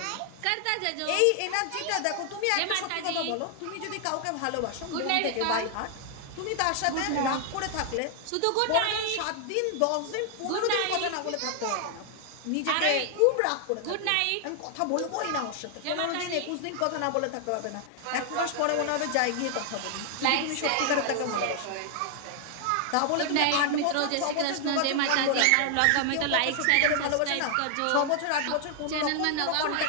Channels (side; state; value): both; different; correlation 0.00